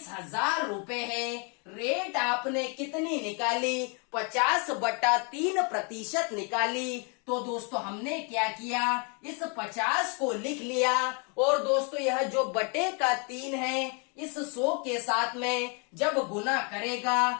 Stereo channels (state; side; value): quieter; right; 35.1 dB